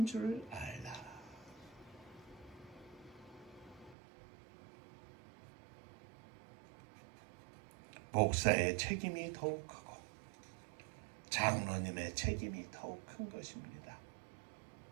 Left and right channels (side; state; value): left; drops out; at 4.0 s